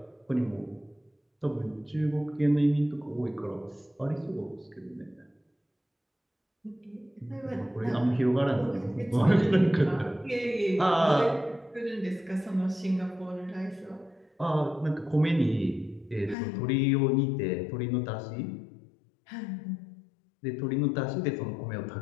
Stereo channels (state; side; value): drops out; right; at 16.4 s